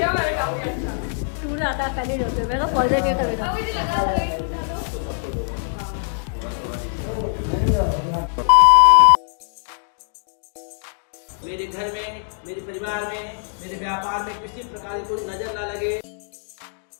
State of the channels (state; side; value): silent; right; digital silence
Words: मेरे काफी अच्छा। तूने आता खाली रखे मैं तो सोचे के करे था। मुझे लगा था एक उठा लो। मेरे घर में, मेरे परिवार में, मेरे व्यापार में किसी प्रकार की कोई नजर ना लगे।